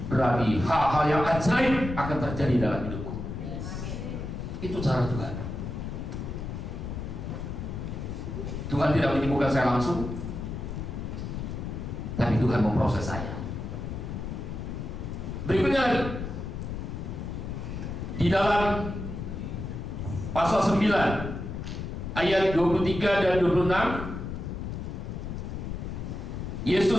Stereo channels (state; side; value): noise; left; rumble, 6 dB below the sound